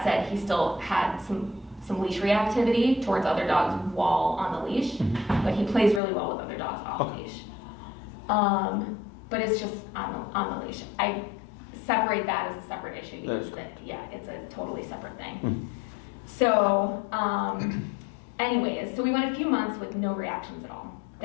said, he still had some leash reactivity towards other dogs while on the leash, but he plays really well with other dogs off leash. But it's just on the leash. I separate that as a separate issue because it's a totally separate thing. So, anyways, so we went a few months with no reactions at all.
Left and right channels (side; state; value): right; drops out; at 6.0 s